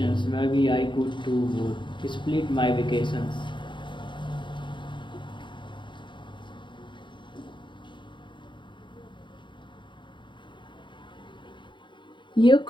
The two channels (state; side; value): late; right; 0.23 ms